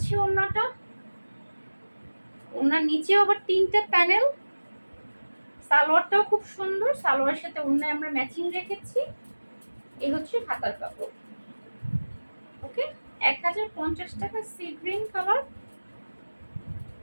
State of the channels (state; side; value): inverted; both; correlation -1.00